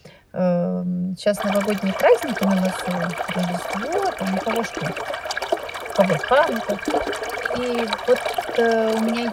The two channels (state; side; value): identical; both; correlation 1.00